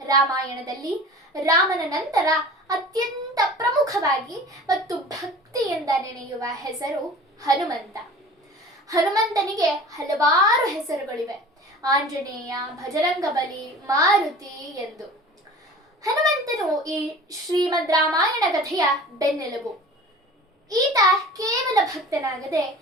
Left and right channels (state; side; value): normal; both; correlation 0.40